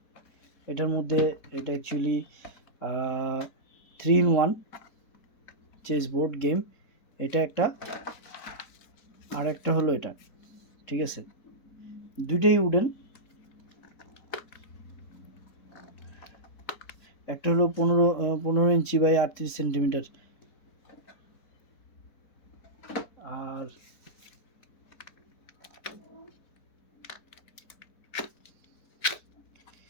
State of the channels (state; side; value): late; right; 4.1 ms